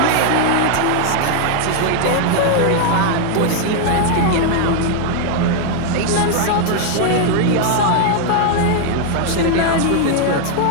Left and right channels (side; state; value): both; different; correlation 0.00